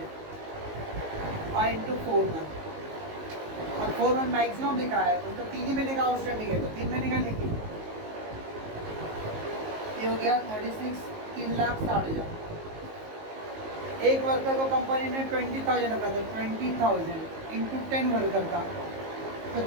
और इंटू 4 मंथ, और 4 मंथ मैक्सिमम लिखा है, उसका 3 ही महीने का आउटस्टैंडिंग है तो 3 महीने का लिखिए। ये हो गया 36, 3,60,000। एक वर्कर को कंपनी ने 20,000 रखा था, 20,000 इंटू 10 वर्कर का तो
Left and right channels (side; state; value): left; late; 19 ms